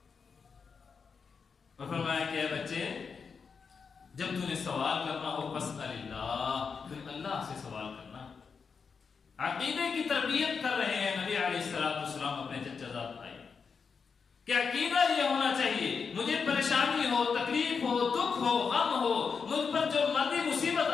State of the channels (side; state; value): right; quieter; 5.7 dB